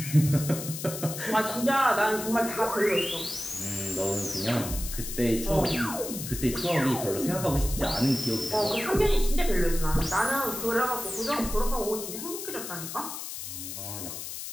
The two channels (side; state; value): left; noise; hiss, 8 dB below the sound